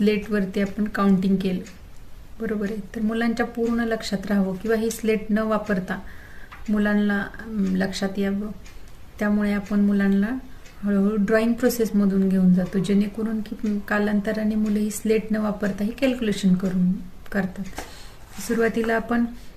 आपण काउंटिंग केलं, बरोबर आहे. तर मुलांच्या पूर्ण लक्षात राहावं किंवा ही स्लेट न वापरता मुलांना लक्षात यावं, त्यामुळे आपण मुलांना हळूहळू ड्रॉइंग प्रोसेसमधून घेऊन जातो, जेणेकरून की कालांतराने मुले ही स्लेट न वापरता ही कॅल्क्युलेशन करतात. सुरुवातीला आपण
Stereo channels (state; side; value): identical; both; correlation 1.00